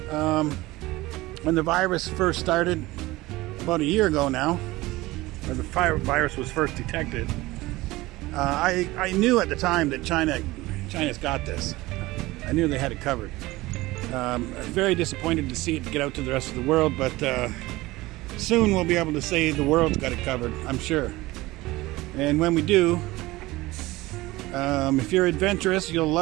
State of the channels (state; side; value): quieter; left; 19.4 dB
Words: When the virus first started, about a year ago now, or the virus was first detected, I knew at the time that China's got this. I knew they had it covered. Very disappointed to see it get out to the rest of the world, but soon we'll be able to say the world's got it covered, I'm sure. And when we do, if you're adventurous, you'll